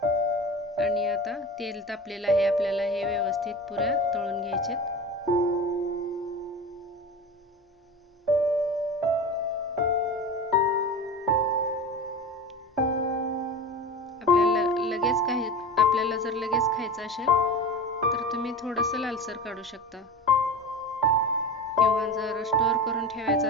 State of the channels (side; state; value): both; normal; correlation 0.30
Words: आणि आता तेल तापलेलं आहे, आपल्याला हे व्यवस्थित पुऱ्या तळून घ्यायचेत। आपल्याला जर लगेच खायचं असेल तर तुम्ही थोडंसं लालसर काढू शकता, किंवा जर स्टोर करून